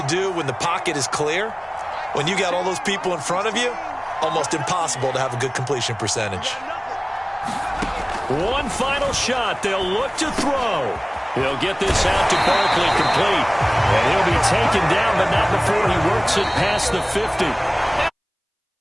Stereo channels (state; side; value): identical; both; correlation 1.00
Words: do when the pocket is clear. When you got all those people in front of you, almost impossible to have a good completion percentage. One final shot. They'll look to throw. He'll get this out to Barkley complete. And he'll be taken down, but not before he works it past the 50.